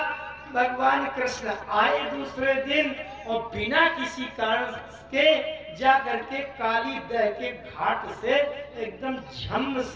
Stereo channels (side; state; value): both; identical; correlation 1.00